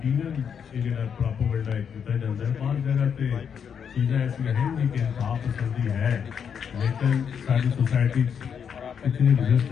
प्रोपेगेंडा किया जाता है। बहुत जगह पे चीज़ें ऐसी हैं जी कि इंसाफ पसंदी है, लेकिन सारी सोसाइटी इतनी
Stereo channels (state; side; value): quieter; right; 7.4 dB